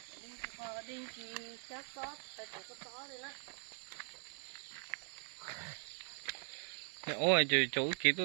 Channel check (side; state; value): left; silent; 50 dB below the other